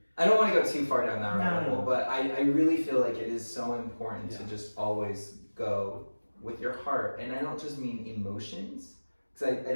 I don't want to go too far down that rabbit hole, but I really feel like it is so important to just always go with your heart. And I don't just mean emotions, because I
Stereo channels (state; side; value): inverted; both; correlation -1.00